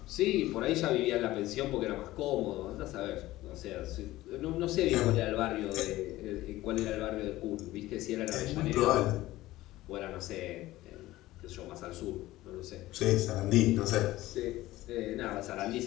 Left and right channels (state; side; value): quieter; right; 16.8 dB